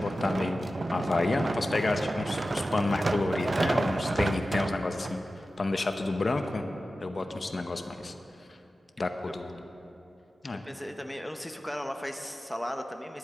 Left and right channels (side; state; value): both; normal; correlation 0.94